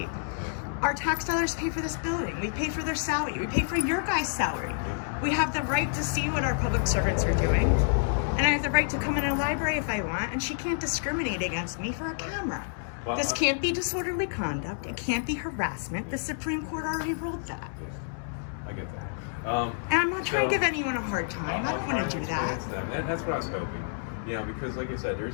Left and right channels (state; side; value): silent; right; digital silence